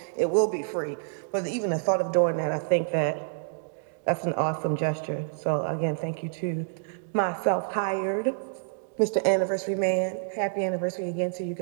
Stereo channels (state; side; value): silent; left; digital silence